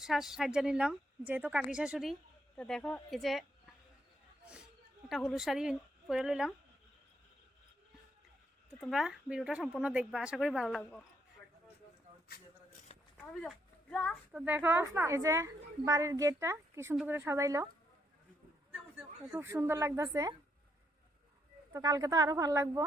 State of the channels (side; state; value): both; normal; correlation 0.75